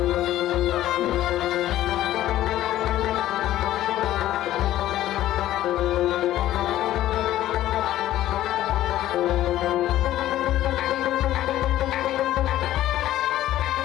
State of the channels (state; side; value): quieter; right; 13.7 dB